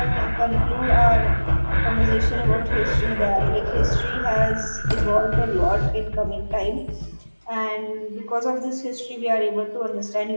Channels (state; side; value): inverted; both; correlation -1.00